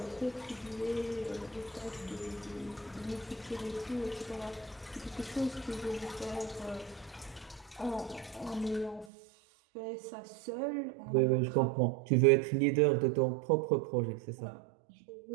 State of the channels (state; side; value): drops out; left; at 9.1 s